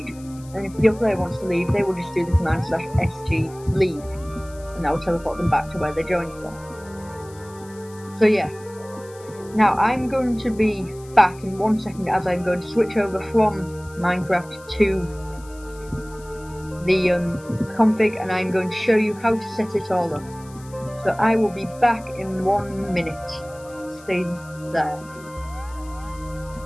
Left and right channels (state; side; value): noise; left; hiss, 23 dB below the sound